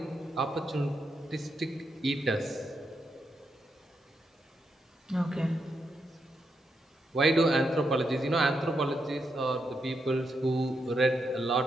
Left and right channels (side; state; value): both; normal; correlation 0.83